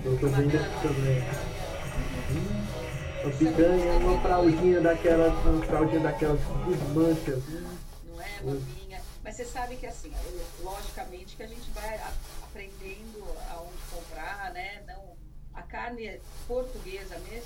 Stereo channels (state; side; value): identical; both; correlation 1.00